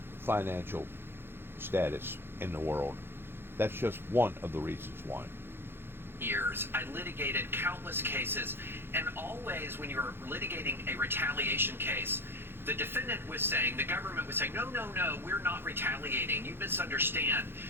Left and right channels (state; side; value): late; left; 0.11 ms